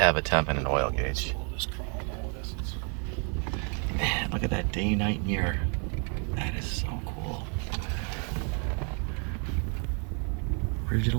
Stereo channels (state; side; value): quieter; left; 38.6 dB